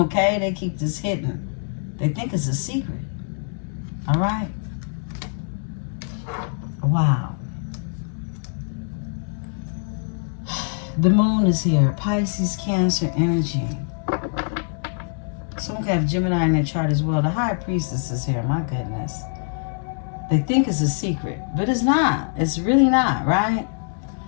They keep this hidden. They think it's a secret. All right? Wow. The moon is here. Pisces, Cancer energy. Someone could have Gemini in their chart as well. The High Priestess is here. My goodness. They think it's a secret, but it's not. It's really not, right?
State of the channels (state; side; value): silent; right; digital silence